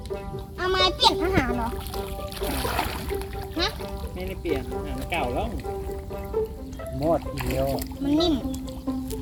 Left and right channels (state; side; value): identical; both; correlation 1.00